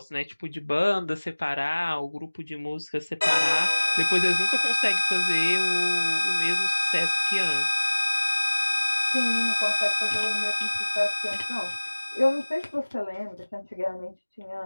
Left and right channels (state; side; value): inverted; both; correlation -1.00